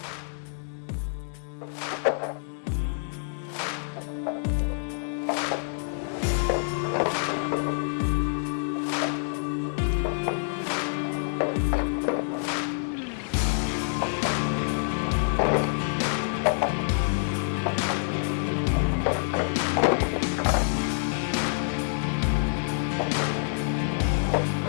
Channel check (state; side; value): silent; right; digital silence